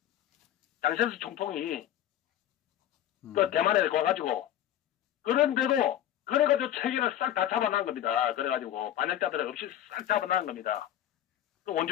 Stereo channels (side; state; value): right; quieter; 11.7 dB